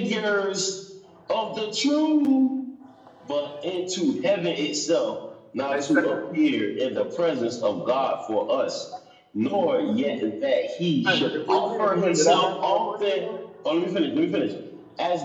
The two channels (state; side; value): identical; both; correlation 1.00